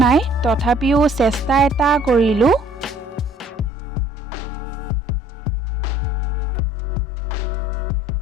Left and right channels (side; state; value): right; drops out; at 3.7 s